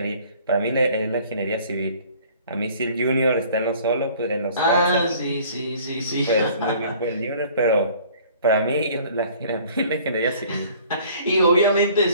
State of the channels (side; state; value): both; inverted; correlation -0.52